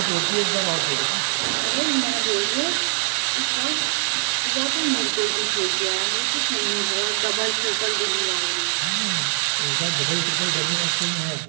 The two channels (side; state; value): left; silent; digital silence